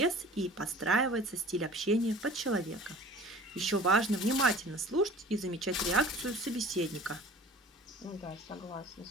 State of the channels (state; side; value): normal; both; correlation 0.44